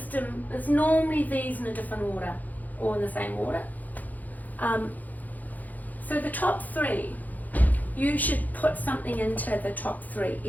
is normally these in a different order or in the same order. So the top 3, you should put something into the top 3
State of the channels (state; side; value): late; right; 0.081 ms